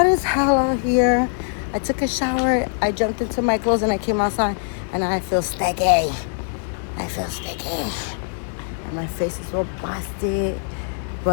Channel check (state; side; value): silent; right; digital silence